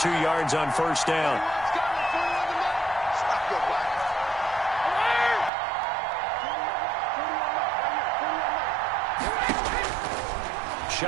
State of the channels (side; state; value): left; drops out; at 5.5 s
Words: 2 yards on 1st down.